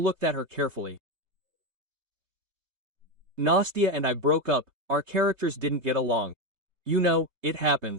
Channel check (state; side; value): late; left; 3.2 ms